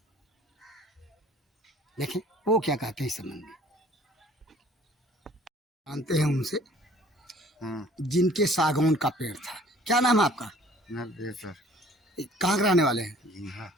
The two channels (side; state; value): both; normal; correlation 0.53